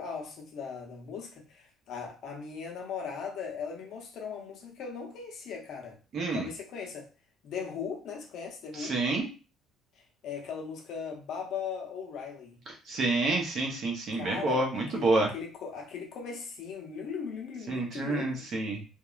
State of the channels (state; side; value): normal; both; correlation 0.62